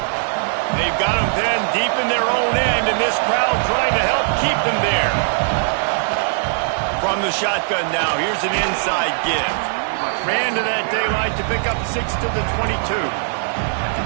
They've got them then deep in their own end, and this crowd trying to help keep them there. From the shotgun now, here's an inside give. Ran to that daylight to pick up 6 to the 22.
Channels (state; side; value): silent; left; digital silence